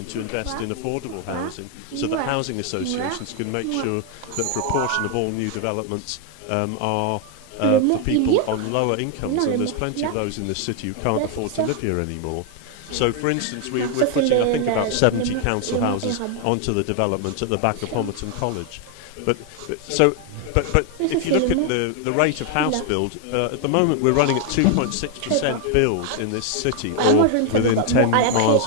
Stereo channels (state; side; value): different; both; correlation 0.00